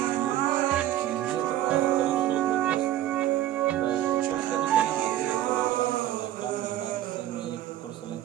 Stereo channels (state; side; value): quieter; left; 13.0 dB